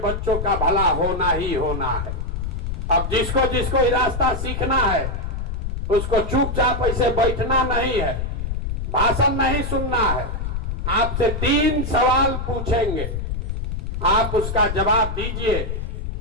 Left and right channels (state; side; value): noise; left; rumble, 3 dB below the sound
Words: का भला होना ही होना है। अब जिसको जिसको ये रास्ता सीखना है उसको चुपचाप ऐसे बैठना नहीं है, भाषण नहीं सुनना है। आपसे 3 सवाल पूछेंगे, आप उसका जवाब दीजिए।